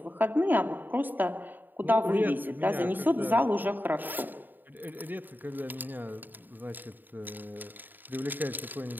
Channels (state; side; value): late; left; 0.090 ms